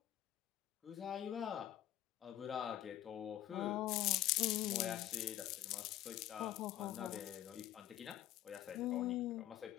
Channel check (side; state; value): right; quieter; 13.2 dB